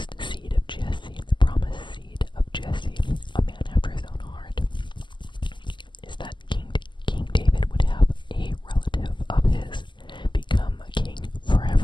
seed of Jesse, a man after his own heart, is that King David would have a relative of his become a king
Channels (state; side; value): late; right; 0.23 ms